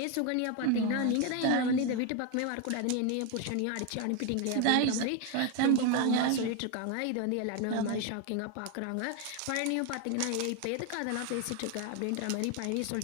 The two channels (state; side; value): different; both; correlation 0.01